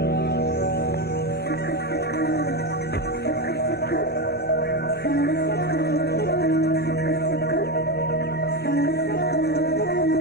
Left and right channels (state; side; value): normal; both; correlation 0.14